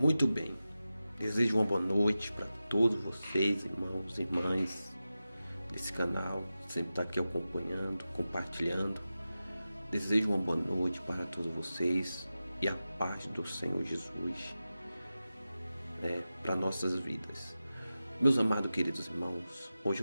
Muito bem, desejo uma boa noite para todos vocês, irmãos e irmãs desse canal, que sempre está aqui acompanhando, compartilhando. Desejo uma boa noite para todos vocês e a paz do Senhor Jesus para nossas vidas. Meus amados queridos irmãos, hoje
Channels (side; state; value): both; inverted; correlation -0.94